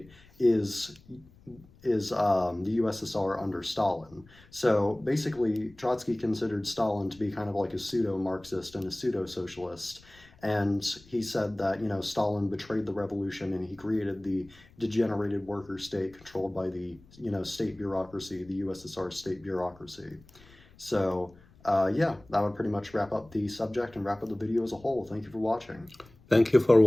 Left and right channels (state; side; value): noise; left; rumble, 25 dB below the sound